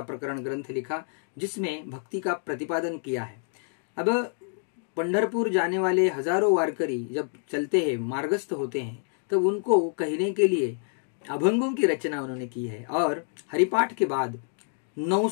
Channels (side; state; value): right; silent; 59 dB below the other